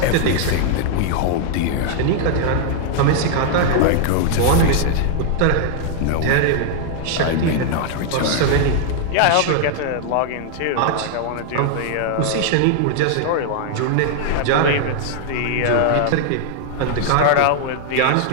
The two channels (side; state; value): both; different; correlation -0.01